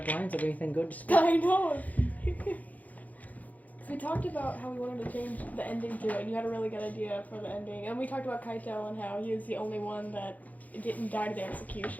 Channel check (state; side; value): late; right; 0.077 ms